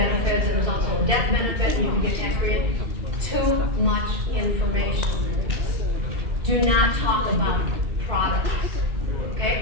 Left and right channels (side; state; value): left; late; 2.7 ms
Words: and there's also a death benefit, and you can get tax free. Too much information. Do not talk about products.